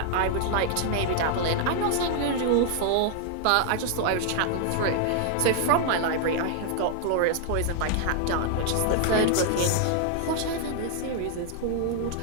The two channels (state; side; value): different; both; correlation 0.00